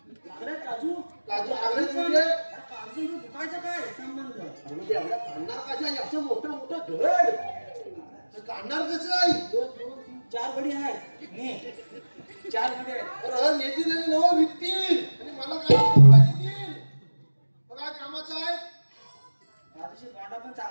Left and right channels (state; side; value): inverted; both; correlation -1.00